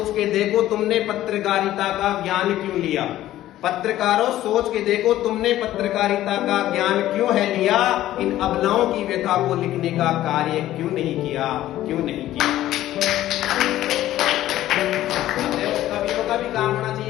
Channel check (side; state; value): right; quieter; 14.0 dB